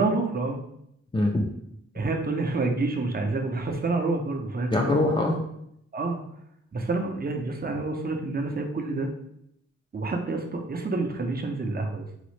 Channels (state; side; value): normal; both; correlation 0.59